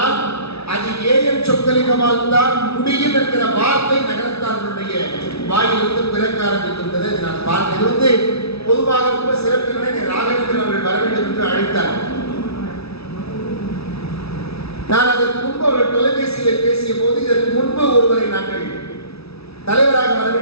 அது ஏஎன் சொக்கலிங்கமால் தான் முடியும் என்கிற வார்த்தை நகரத்தார்களுடைய வாயிலிருந்து பிறக்க ஆரம்பித்திருந்தது. நான் பார்த்தேன். இது வந்து பொதுவாக ரொம்ப சிறப்பினை ராகவேந்திரன் அவர்கள் வர வேண்டும் என்று அழைத்தார். நான் அதற்கு முன்பு அவர்கள் தொலைபேசியில் பேசிய போது இதற்கு முன்பு ஒருவரை நாங்கள் தலைவராக வர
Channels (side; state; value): right; late; 0.78 ms